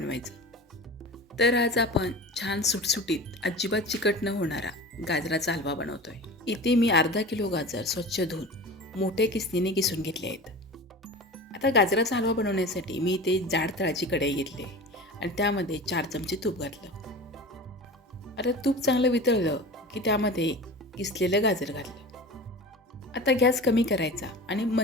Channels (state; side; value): normal; both; correlation 0.34